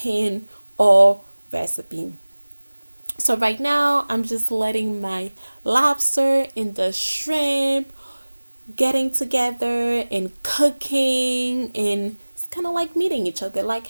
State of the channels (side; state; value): both; inverted; correlation -1.00